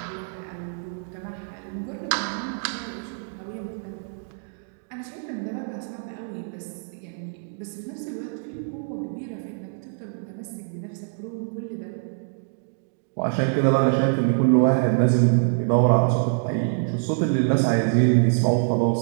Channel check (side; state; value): left; silent; digital silence